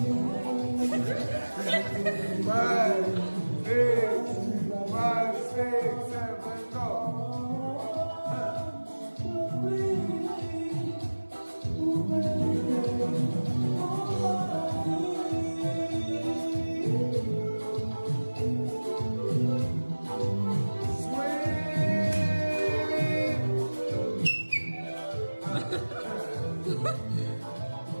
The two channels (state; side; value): inverted; both; correlation -1.00